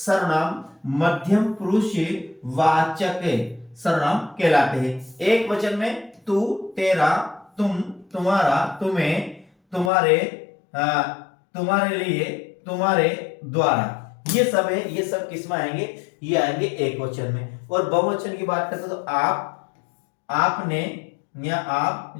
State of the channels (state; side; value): drops out; right; at 9.9 s